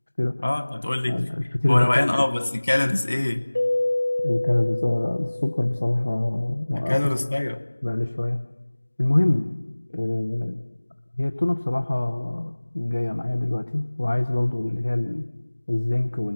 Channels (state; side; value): inverted; both; correlation -1.00